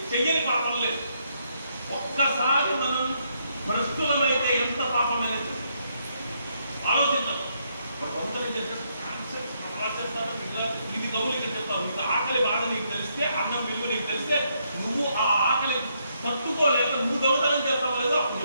చెయ్యని పాపం లేదు. ఒక్కసారి మనం భ్రష్టులమైతే ఎంత పాపమైన ఆలోచించాం. కొందరు చెప్తాను, ఇది నవ్వులు ఇక్కడ చెప్తావు, నీకు ఆకలి బాగా నీకు తెలిస్తే, అన్నం విలువ నీకు తెలిస్తే, నువ్వు ఆ ఆకలి తట్టుకోలేక నువ్వు దొంగతనం చేస్తావు లేదో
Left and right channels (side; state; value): both; inverted; correlation -0.76